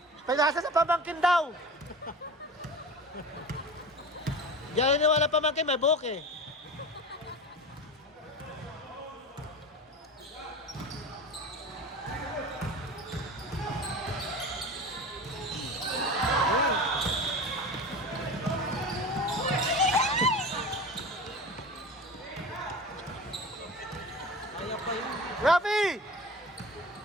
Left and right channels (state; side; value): normal; both; correlation 0.32